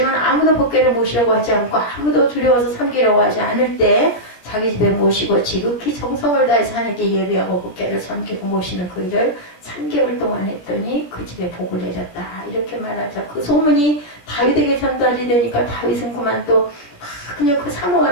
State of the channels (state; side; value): late; right; 17 ms